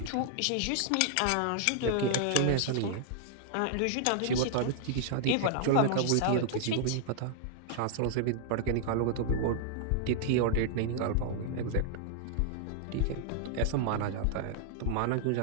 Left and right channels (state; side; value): different; both; correlation -0.01